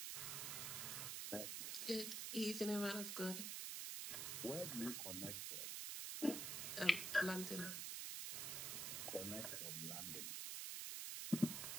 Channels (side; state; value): right; noise; hiss, 2 dB below the sound